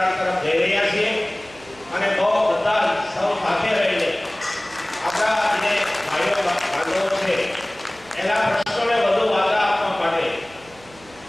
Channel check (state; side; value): noise; right; hum, 24 dB below the sound